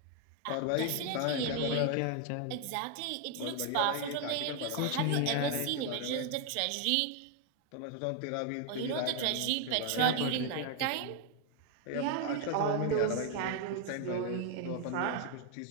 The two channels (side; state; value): both; different; correlation 0.00